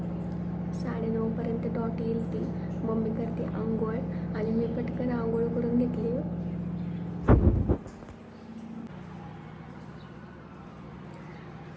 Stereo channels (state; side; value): identical; both; correlation 1.00